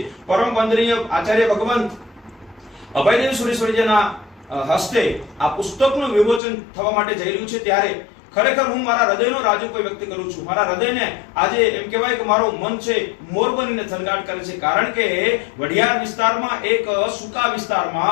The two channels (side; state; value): right; drops out; at 6.4 s